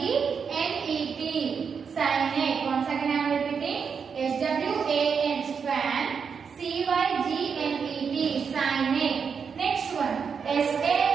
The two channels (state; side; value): quieter; left; 6.2 dB